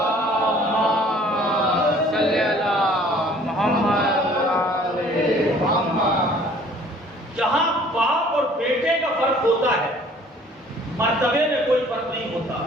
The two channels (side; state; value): both; normal; correlation 0.54